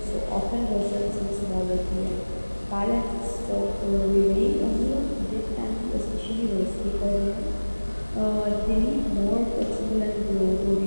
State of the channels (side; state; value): both; inverted; correlation -1.00